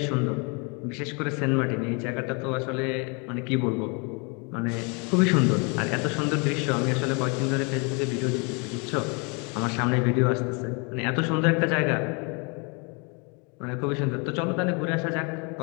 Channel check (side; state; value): right; quieter; 32.9 dB